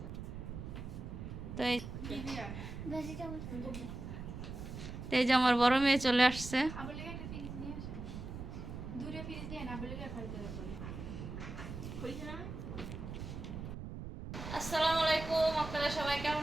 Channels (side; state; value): right; noise; rumble, 8 dB below the sound